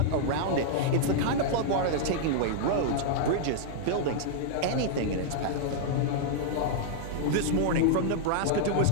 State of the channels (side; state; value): both; different; correlation -0.01